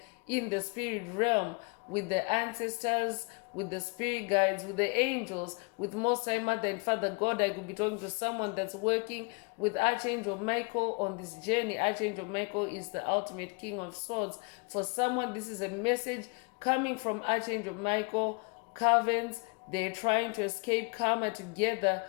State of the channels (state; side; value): quieter; right; 32.6 dB